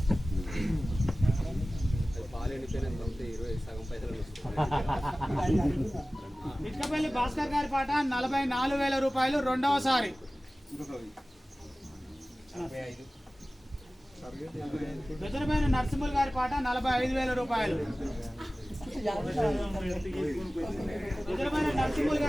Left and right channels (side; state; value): both; normal; correlation 0.97